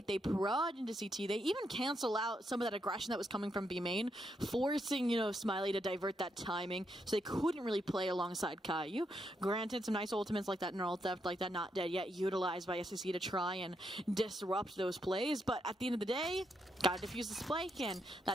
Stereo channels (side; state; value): both; normal; correlation 0.79